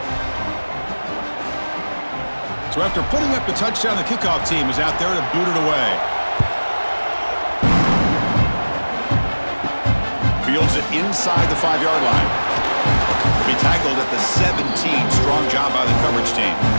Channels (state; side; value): inverted; both; correlation -1.00